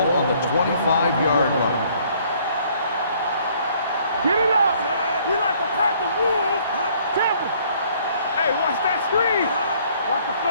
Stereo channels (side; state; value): both; inverted; correlation -0.61